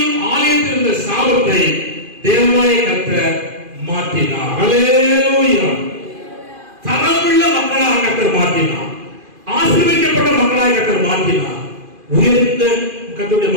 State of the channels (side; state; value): left; late; 2.5 ms